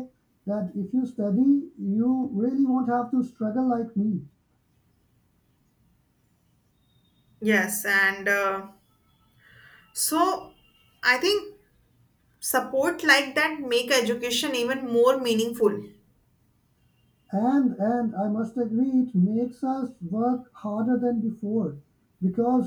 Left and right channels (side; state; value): both; identical; correlation 1.00